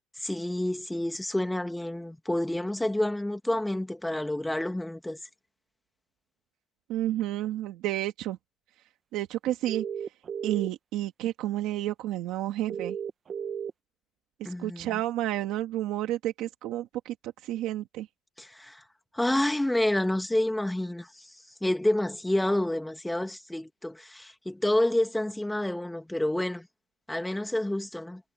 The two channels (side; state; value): both; normal; correlation 0.83